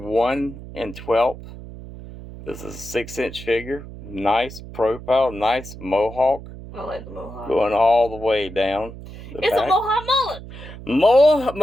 and 12th. This is a 6-inch figure. Nice profile, nice mohawk. I like the mohawk. Going all the way down the it's back. A mohawk mullet.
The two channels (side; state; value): right; noise; hum, 14 dB below the sound